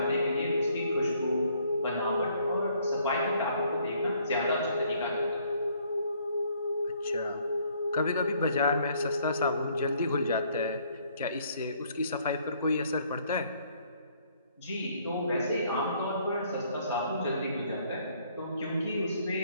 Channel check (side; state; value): both; inverted; correlation -0.65